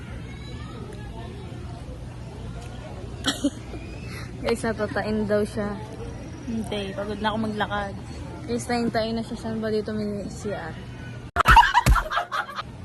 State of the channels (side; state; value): both; identical; correlation 1.00